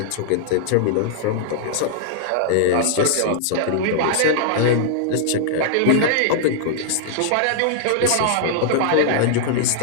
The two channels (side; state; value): both; different; correlation -0.01